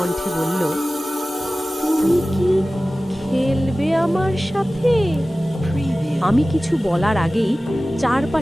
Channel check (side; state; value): both; normal; correlation 0.97